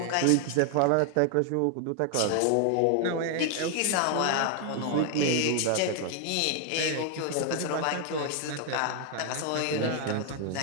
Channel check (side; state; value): both; different; correlation 0.00